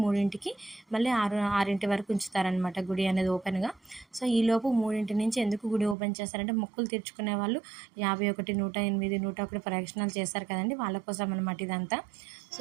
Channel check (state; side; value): drops out; left; at 6.0 s